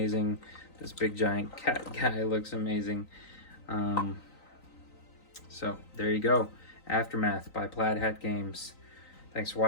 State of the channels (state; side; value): late; right; 3.9 ms